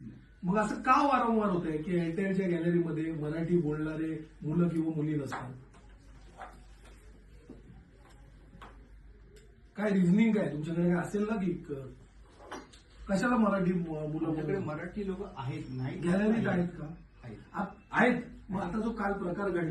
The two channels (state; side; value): identical; both; correlation 1.00